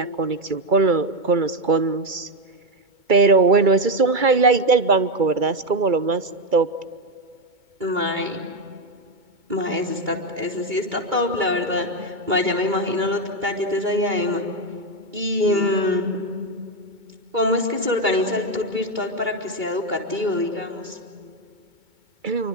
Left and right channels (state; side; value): late; left; 2.3 ms